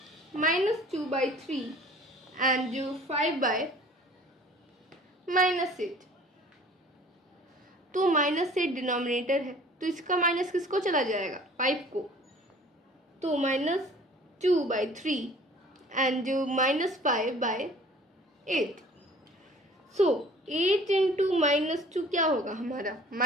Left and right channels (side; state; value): both; normal; correlation 0.50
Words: -2/3 and 5/-8। तो -8 डिनोमिनेटर है, तो इसका माइनस किसको चला जाएगा, 5 को। तो -2/3 एंड -5/8। सो 8 इंटू -2 क्या होगा हमारा,